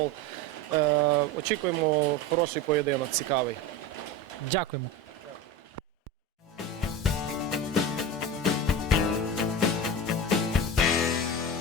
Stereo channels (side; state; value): both; normal; correlation 0.26